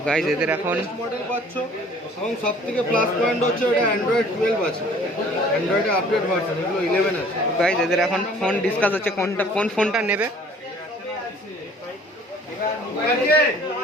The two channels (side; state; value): both; normal; correlation 0.53